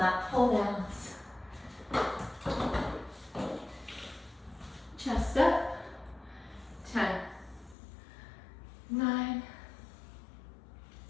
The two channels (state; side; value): drops out; right; at 7.8 s